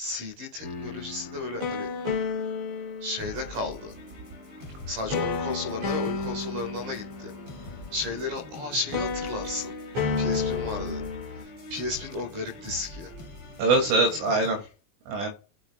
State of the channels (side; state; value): left; late; 19 ms